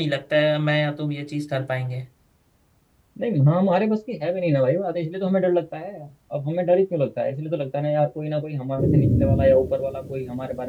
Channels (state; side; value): identical; both; correlation 1.00